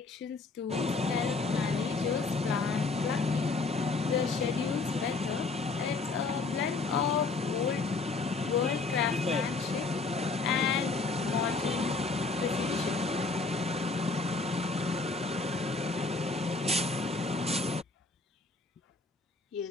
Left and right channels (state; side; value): quieter; right; 4.0 dB